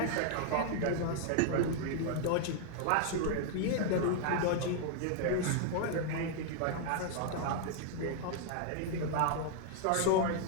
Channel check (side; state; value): both; different; correlation 0.00